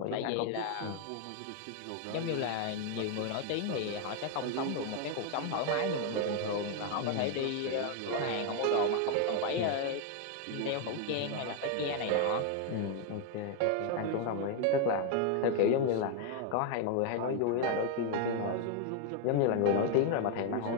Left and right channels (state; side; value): different; both; correlation 0.01